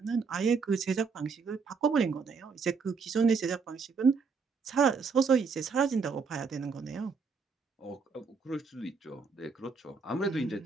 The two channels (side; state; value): left; quieter; 5.1 dB